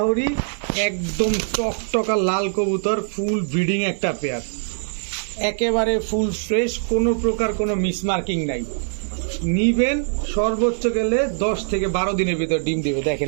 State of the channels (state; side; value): silent; left; digital silence